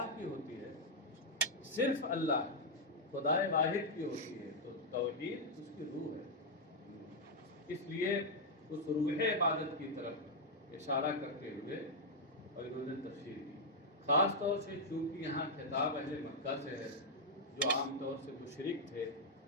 کی ہوتی ہے، صرف اللہ خدا واحد کی ہوتی ہے، تو توحید اس کی روح ہے۔ اس لیے اس روح عبادت کی طرف اشارہ کرتے ہوئے اور انہوں نے تفسیر کی، خاص طور سے چونکہ یہاں خطاب اہل مکہ سے ہے جو عام طور سے مشرک تھے،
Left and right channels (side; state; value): both; normal; correlation -0.03